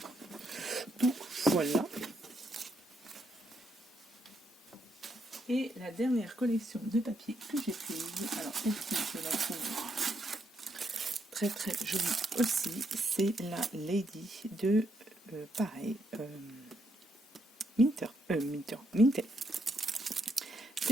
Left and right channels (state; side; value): normal; both; correlation 0.77